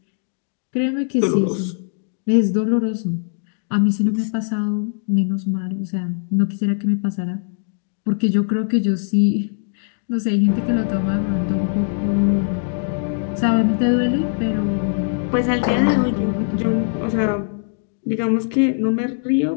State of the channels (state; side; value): silent; right; 65 dB below the other